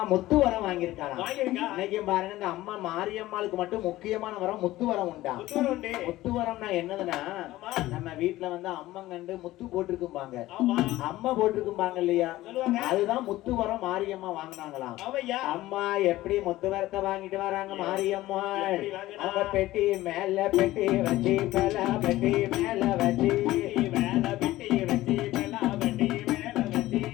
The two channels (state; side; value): quieter; right; 16.5 dB